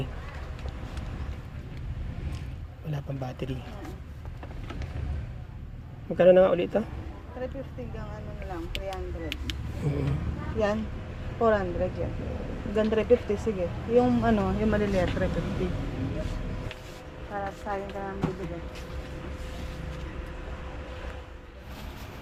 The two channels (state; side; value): identical; both; correlation 1.00